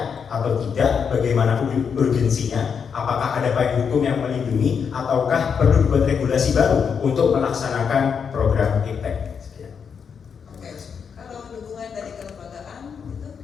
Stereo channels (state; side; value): quieter; right; 6.6 dB